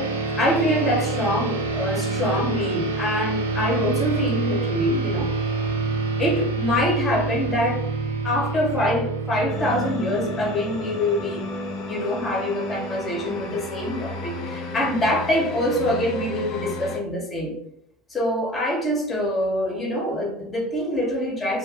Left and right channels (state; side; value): normal; both; correlation 0.33